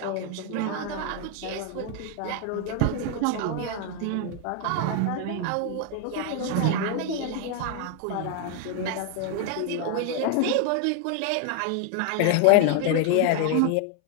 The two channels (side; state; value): both; different; correlation 0.00